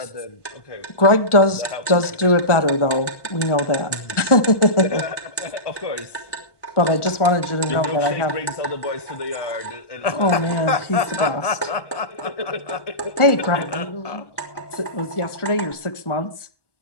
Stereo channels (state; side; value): late; right; 1.2 ms